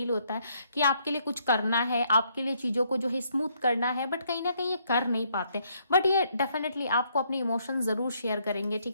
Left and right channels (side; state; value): both; inverted; correlation -0.71